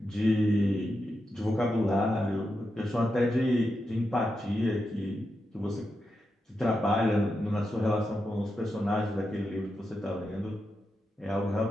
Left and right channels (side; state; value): both; normal; correlation 0.87